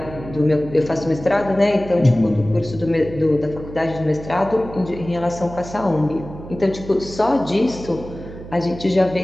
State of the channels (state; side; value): noise; right; hum, 14 dB below the sound